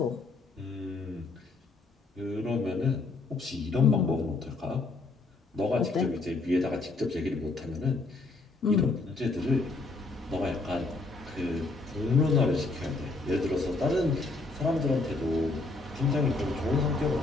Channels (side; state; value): right; quieter; 3.5 dB